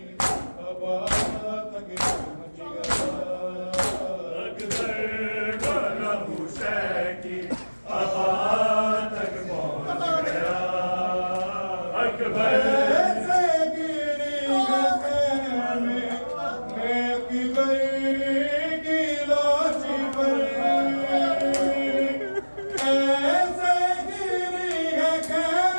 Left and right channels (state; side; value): inverted; both; correlation -1.00